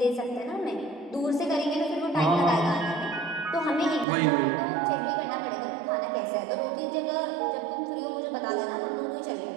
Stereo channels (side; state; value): left; drops out; at 4.0 s